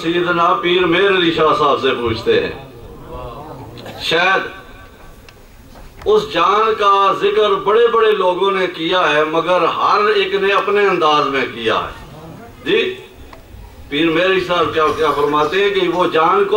سیدنا پیر مہر علی شاہ صاحب سے پوچھتے ہیں۔ شاید اس جان کا ذکر بڑے بڑے لوگوں نے کیا ہے، مگر ہر ایک نے اپنے انداز میں کیا ہے جی۔ پیر مہر علی صاحب کیا فرماتے ہیں کہ وہ جان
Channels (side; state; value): both; identical; correlation 1.00